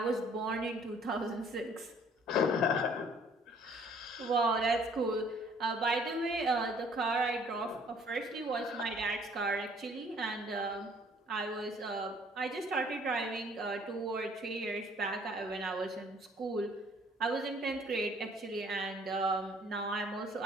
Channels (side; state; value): both; normal; correlation 0.58